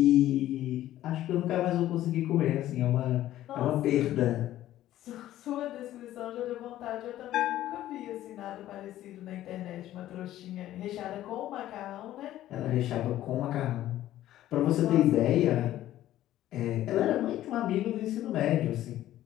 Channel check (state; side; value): quieter; right; 13.6 dB